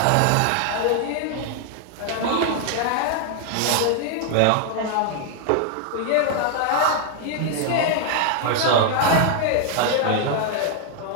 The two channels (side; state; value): both; different; correlation 0.00